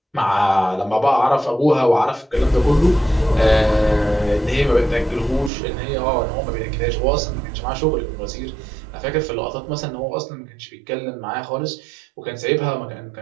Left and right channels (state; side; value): drops out; left; at 5.5 s